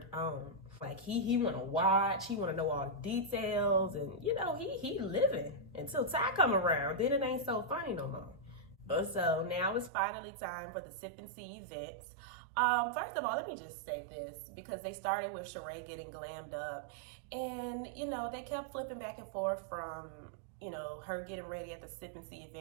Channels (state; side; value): drops out; left; at 9.9 s